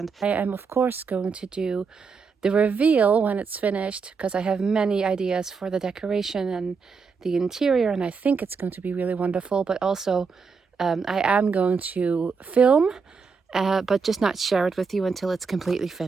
I am of course going to do the reveal when it's finished, because I have many ideas for the decoration and the interior, and I think it's going to be really wonderful. But also I am going to film, but just not share it with you until it's completely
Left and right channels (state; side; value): quieter; left; 5.3 dB